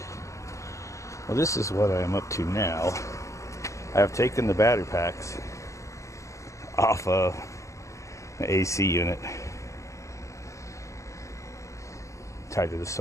Well, this is what I am up to now. I have taken the battery packs off of the AC unit tied to the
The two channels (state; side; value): late; right; 0.15 ms